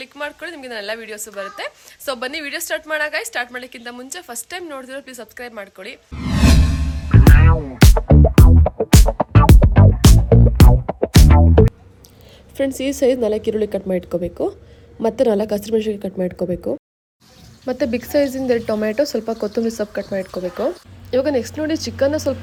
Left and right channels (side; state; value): both; identical; correlation 1.00